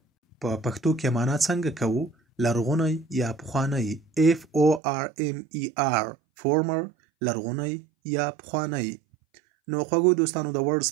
په پښتو کې معنا څنګه کوو؟ لرغونی یا پخوانی. FORMER former لرغونی یا پخوانی. نو خوږو دوستانو د ورډز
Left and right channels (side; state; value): left; drops out; at 4.8 s